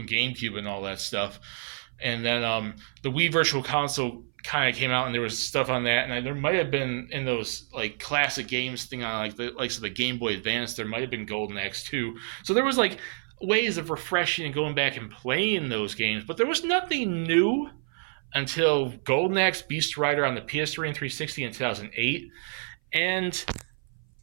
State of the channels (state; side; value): silent; left; 57 dB below the other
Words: GameCube and all that stuff. And then the Wii Virtual Console kind of came out, and there was stuff on that. And there might have been in those classic games thing on the Game Boy Advance. There might have been Golden Axe 2. So there was ways of refreshing and going back and playing those games, but there was nothing new until Golden Axe Beast Rider on the PS3 and 360 in 2008. And